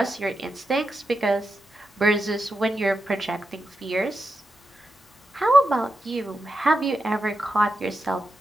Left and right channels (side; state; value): both; normal; correlation 0.88